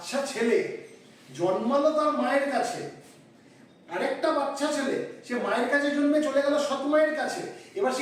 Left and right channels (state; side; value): identical; both; correlation 1.00